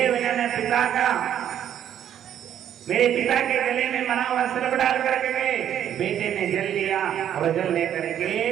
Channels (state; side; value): quieter; left; 10.2 dB